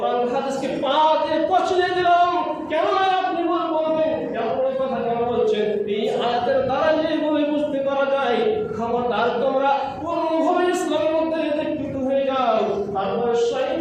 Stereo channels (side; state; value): both; identical; correlation 1.00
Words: হাদিসকে পা দিয়ে পচিয়ে দিলাম। কেন আপনি বলবেন এই কথা কেন বলছেন? এই আয়াতের দ্বারা যেগুলো বুঝতে পারা যায়, খবরদার তোমরা পূর্ণভাবে ইসলামের মধ্যে দীক্ষিত হয়ে যাও। তারপর